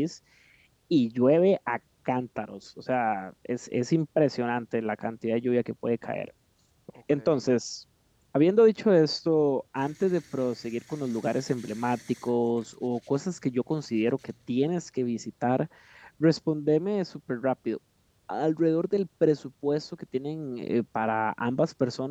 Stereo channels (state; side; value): identical; both; correlation 1.00